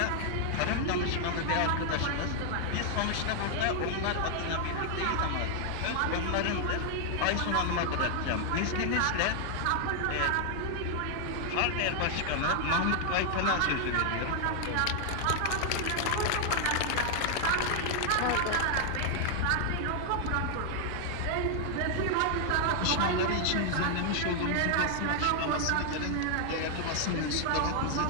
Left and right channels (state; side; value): different; both; correlation 0.00